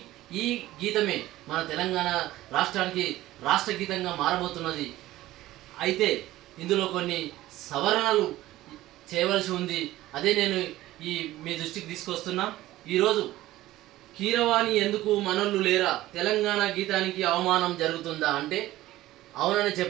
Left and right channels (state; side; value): quieter; left; 15.9 dB